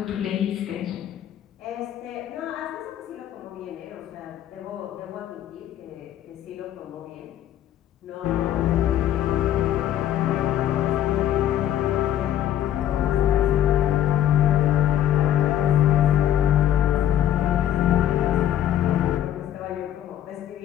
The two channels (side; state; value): right; quieter; 11.4 dB